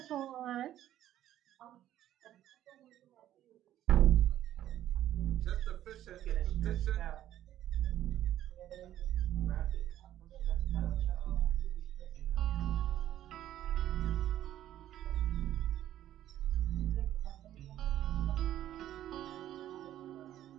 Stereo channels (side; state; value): left; quieter; 12.4 dB